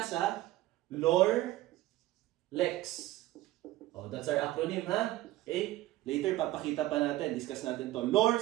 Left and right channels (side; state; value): left; quieter; 16.5 dB